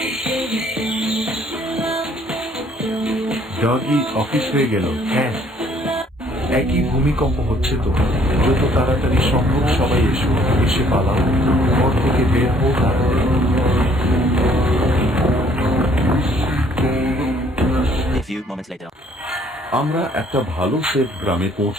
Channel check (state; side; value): normal; both; correlation 0.61